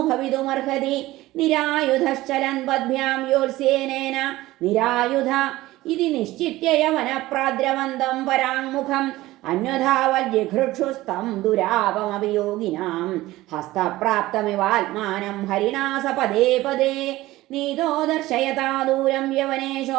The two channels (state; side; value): quieter; left; 17.4 dB